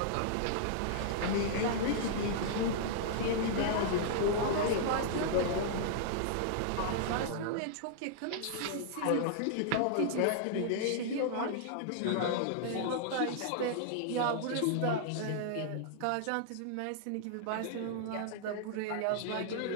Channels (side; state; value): both; different; correlation -0.01